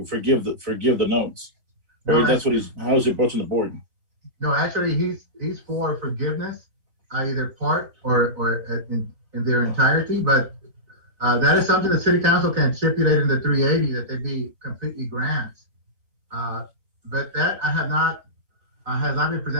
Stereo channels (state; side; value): late; left; 3.8 ms